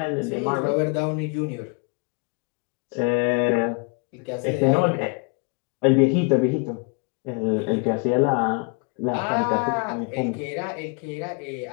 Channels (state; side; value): quieter; right; 33.1 dB